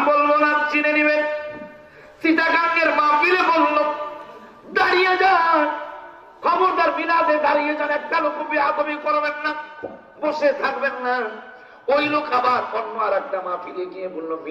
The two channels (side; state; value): both; identical; correlation 1.00